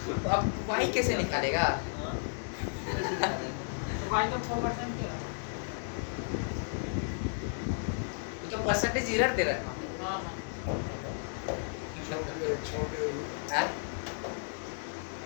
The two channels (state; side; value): silent; right; digital silence